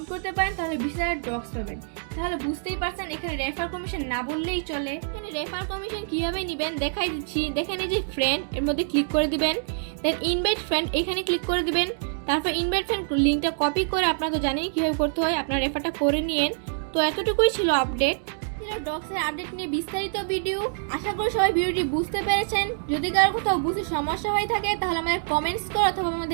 করতে পারেন তাহলে 20,000 ডক্স পাবেন। তাহলে বুঝতেই পারছেন এখানে রেফার কমিশন না বললেই চলে। এখানে রেফার কমিশন কিভাবে নেবেন দেখাই দিচ্ছি। দেখেন এই যে ফ্রেন্ড, এর মধ্যে ক্লিক করে দিবেন, দেন ইনভাইট ফ্রেন্ড এখানে ক্লিক করে দিবেন। তারপর ইনভাইট ফ্রেন্ড লিঙ্কটা কপি করে, আপনারা তো জানেন কিভাবে করতে হয়, আপনার রেফারটা করে নিয়েন। তো এতটুকুই ছিল আপডেট, ছিল ডক্সের আপডেট নিয়ে বিস্তারিত ভিডিও। আশা করি সবাই ভিডিওটি বুঝতে পেরেছেন। যদি কারো কোথাও বুঝতে সমস্যা হয়ে থাকে তাহলে আমাদের কমেন্টস করে অথবা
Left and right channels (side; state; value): left; silent; digital silence